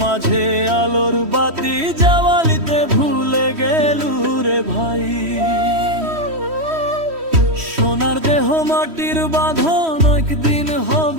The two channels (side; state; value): left; late; 3.1 ms